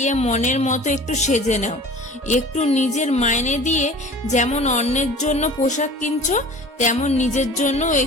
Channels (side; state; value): both; normal; correlation 0.42